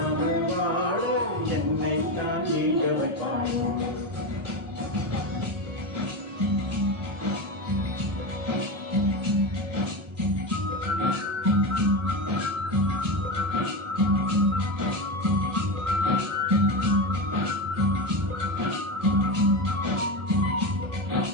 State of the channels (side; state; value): left; late; 1.1 ms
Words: வாழ என்னை தான் நீங்க வைப்பாளோ